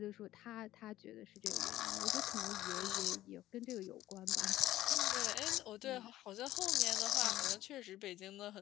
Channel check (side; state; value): right; quieter; 14.6 dB